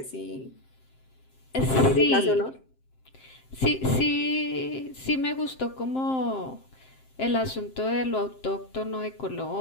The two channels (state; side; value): late; right; 7.6 ms